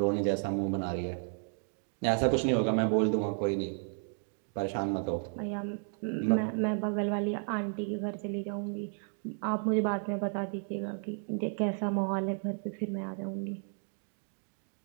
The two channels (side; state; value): left; silent; 56 dB below the other